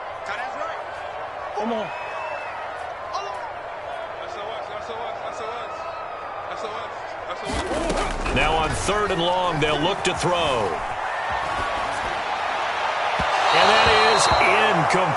Come on. Now on 3rd and long, they'll look to throw. And that is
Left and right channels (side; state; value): both; identical; correlation 1.00